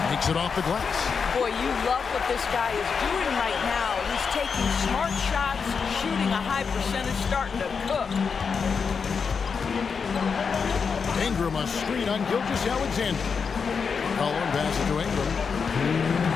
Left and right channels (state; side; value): quieter; right; 5.8 dB